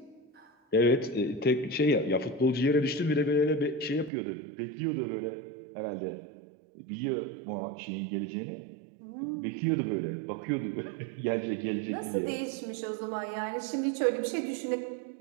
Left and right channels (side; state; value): left; drops out; at 4.1 s